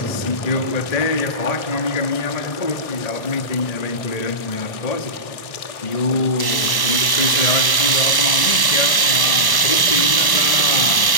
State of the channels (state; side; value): late; right; 1.1 ms